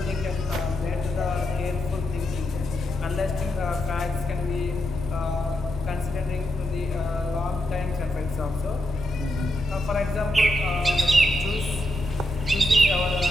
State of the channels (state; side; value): normal; both; correlation 0.84